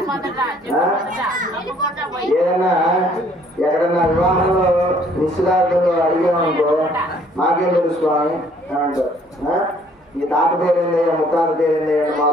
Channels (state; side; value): normal; both; correlation 0.61